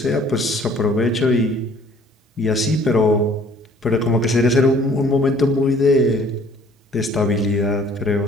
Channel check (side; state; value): both; normal; correlation 0.56